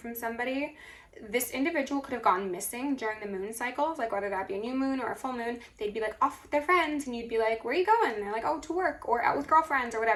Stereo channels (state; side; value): identical; both; correlation 1.00